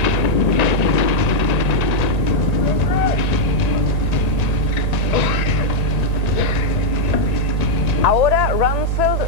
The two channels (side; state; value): right; late; 1.9 ms